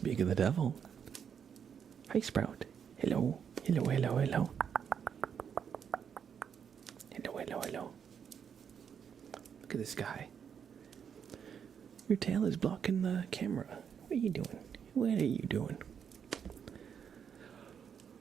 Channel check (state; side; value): quieter; left; 7.6 dB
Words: of the devil. Hi, Sprout. Hello. Hello. Hello. Look at this guy. Your tail is blocking the camera. What are you doing?